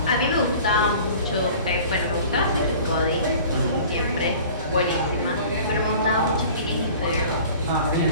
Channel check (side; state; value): both; inverted; correlation -0.45